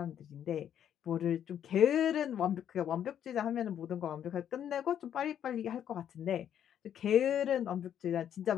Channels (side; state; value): right; quieter; 9.7 dB